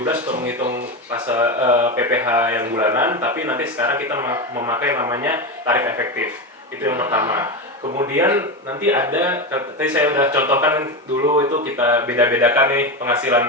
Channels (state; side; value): normal; both; correlation 0.16